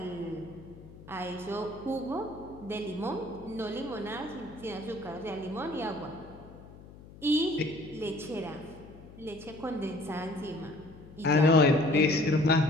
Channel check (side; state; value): left; noise; hum, 19 dB below the sound